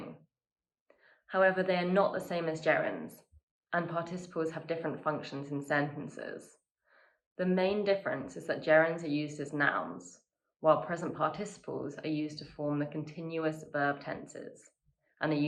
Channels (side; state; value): both; identical; correlation 1.00